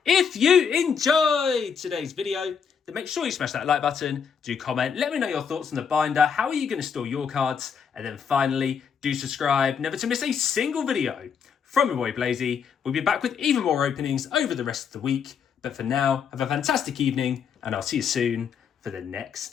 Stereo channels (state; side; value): quieter; right; 6.9 dB